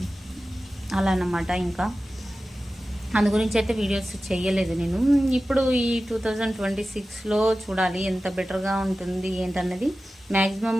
అలా అన్నమాట. ఇంకా అందు గురించి అయితే వీడియోస్ చేయలేదు నేను. ఇప్పుడు ఈ 2026లో చూడాలి ఎంత బెటర్గా ఉంటుంది ఏంటన్నది. మ్యాక్సిమం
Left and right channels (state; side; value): normal; both; correlation 0.95